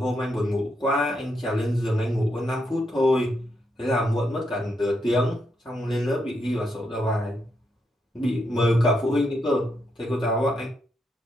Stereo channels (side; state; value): both; normal; correlation 0.80